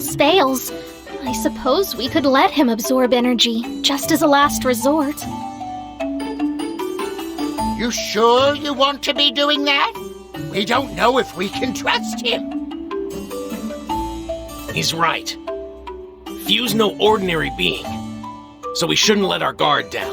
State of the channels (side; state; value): both; identical; correlation 1.00